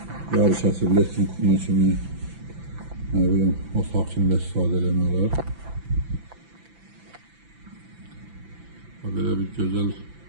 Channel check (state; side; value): late; left; 5.9 ms